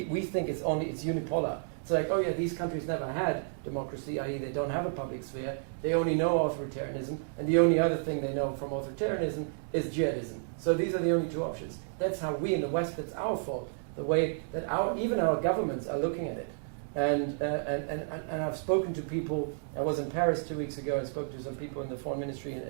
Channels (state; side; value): silent; left; digital silence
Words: think it's unipolar. It's like, oh yeah, these countries never had democracy, i.e. they don't have a public sphere, they only know authoritarianism, and the only other thing they know from authoritarianism is jihadism. So these are the only two options. That's how we in the West, that's our fault, the way that even our governments are looking at it. And I've spoken to people, I was in Paris 2 weeks ago and spoke to some people in the foreign ministry